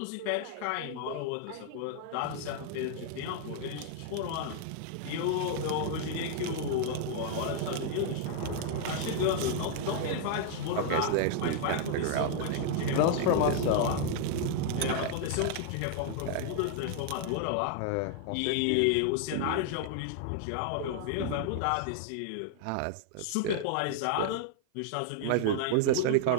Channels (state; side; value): different; both; correlation -0.01